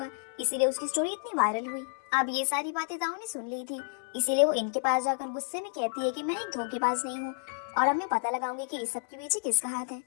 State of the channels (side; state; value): right; silent; 58 dB below the other